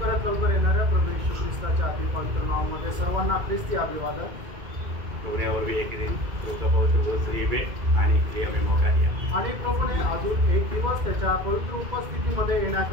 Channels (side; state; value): left; late; 2.2 ms